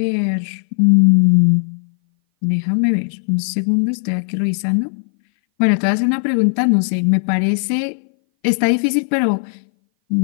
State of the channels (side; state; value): right; silent; 60 dB below the other